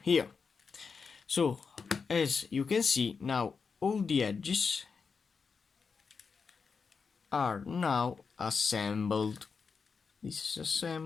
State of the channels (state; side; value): quieter; right; 5.4 dB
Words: here. So as you can see, now all the edges are now assembled. This is